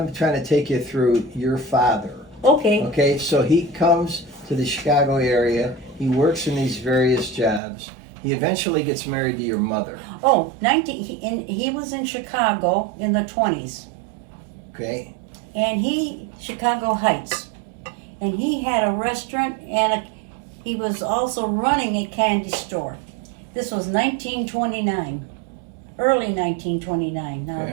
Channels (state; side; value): drops out; left; at 7.6 s